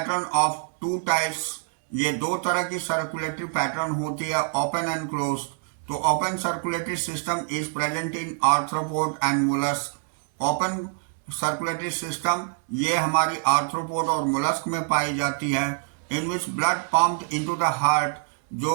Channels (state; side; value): silent; left; 55 dB below the other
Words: of two types, ये दो तरह की सर्कुलेटरी पैटर्न होती है, ओपन एंड क्लोज. तो open circulatory system is present in arthropod and mollusc. Open circulatory system ये हमारी आर्थ्रोपोड और मोलस्क में पाई जाती है. In which blood pumped into the heart,